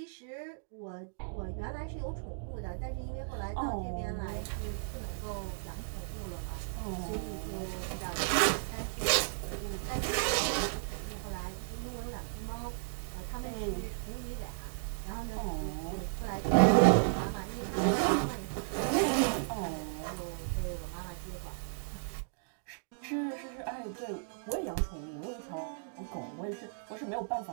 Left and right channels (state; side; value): silent; left; digital silence